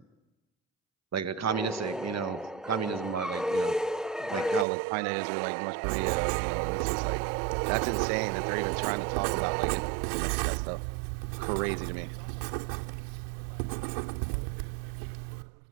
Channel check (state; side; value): drops out; left; at 4.7 s